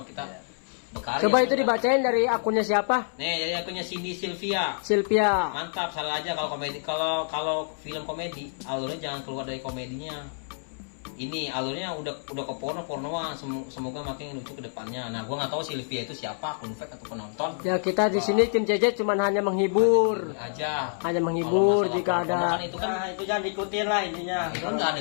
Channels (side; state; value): right; silent; 60 dB below the other